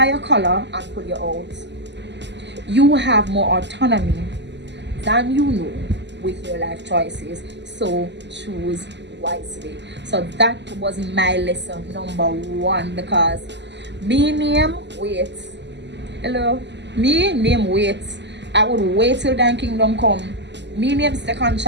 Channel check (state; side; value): late; left; 0.51 ms